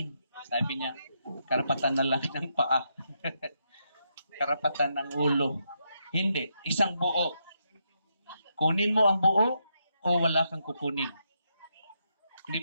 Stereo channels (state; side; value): inverted; both; correlation -0.81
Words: Sabi niya, karapatan na lang ng paa. Karapatan ng ulo. Hindi, isang buo. Kunin mo ang buo o wala kang kukunin. Hindi